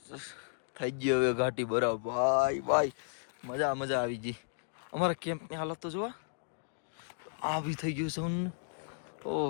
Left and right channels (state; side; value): silent; right; digital silence